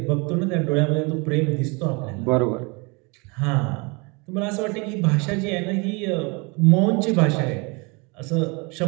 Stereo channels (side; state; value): left; quieter; 29.5 dB